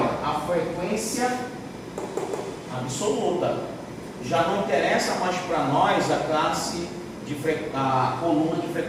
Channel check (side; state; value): both; identical; correlation 1.00